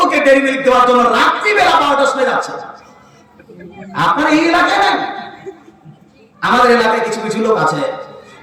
ডেরি মিল্ক দেওয়ার জন্য রাত্রি বেলা 12টার সময় যাচ্ছে। আপনার এই এলাকায় নাই? আমাদের এলাকায় কিছু কিছু লোক আছে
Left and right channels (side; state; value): both; identical; correlation 1.00